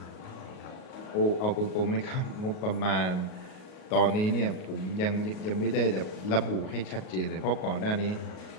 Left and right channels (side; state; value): right; late; 38 ms